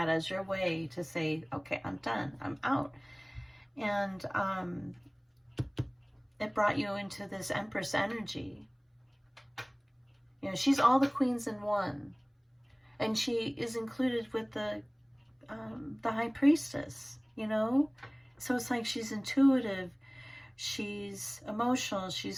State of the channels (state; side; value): identical; both; correlation 1.00